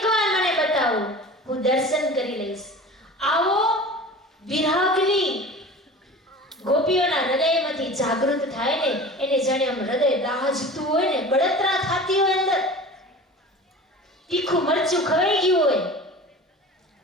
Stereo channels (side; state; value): both; normal; correlation 0.37